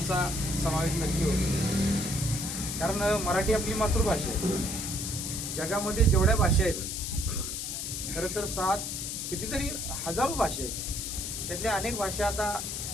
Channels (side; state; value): left; noise; hiss, 4 dB below the sound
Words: समावेश नक्की होतो. कारण मराठी आपली मातृभाषा आहे. जगामध्ये जेवढ्या भाषा आहेत, खरं तर 7 कितीतरी हजारो भाषा आहेत, त्यातल्या अनेक भाषा आता